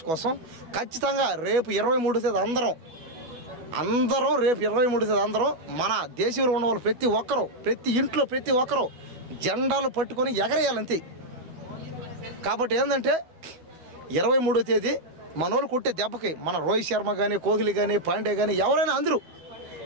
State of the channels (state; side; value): late; left; 12 ms